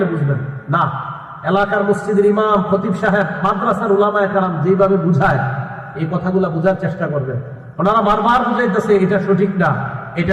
বুঝবেন না। এলাকার মসজিদের ইমাম, খতিব সাহেব, মাদ্রাসার ওলামায়ে কেরাম যেভাবে বুঝায়, এই কথাগুলো বুঝার চেষ্টা করবেন। ওনারা বারবার বুঝাইতেছে এটা সঠিক না,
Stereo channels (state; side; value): identical; both; correlation 1.00